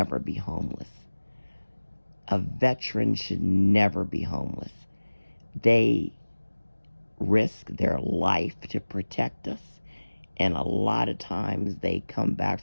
be homeless. A veteran should never be homeless. They risk their life to protect us, and a lot of times they come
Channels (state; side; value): inverted; both; correlation -1.00